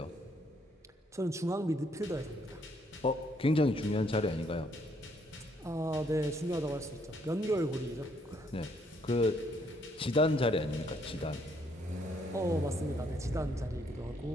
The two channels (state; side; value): normal; both; correlation 0.70